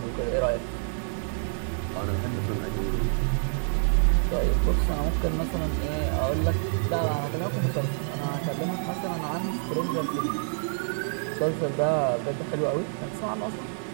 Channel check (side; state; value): left; silent; digital silence